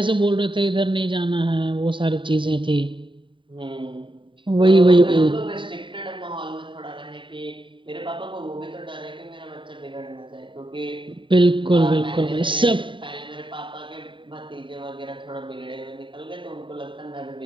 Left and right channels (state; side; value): late; left; 0.24 ms